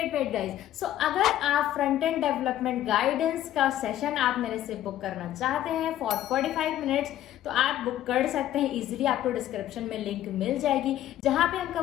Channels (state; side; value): quieter; right; 12.8 dB